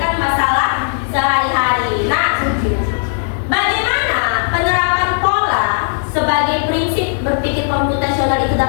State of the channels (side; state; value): right; silent; digital silence